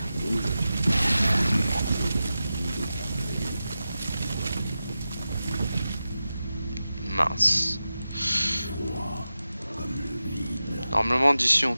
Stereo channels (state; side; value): inverted; both; correlation -0.93